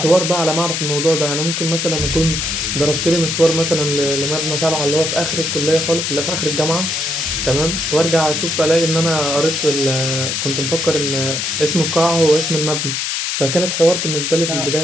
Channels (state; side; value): noise; left; hiss, 1 dB below the sound